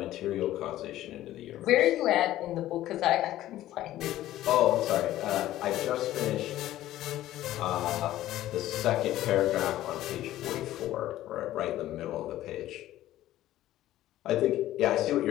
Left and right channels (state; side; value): quieter; right; 14.2 dB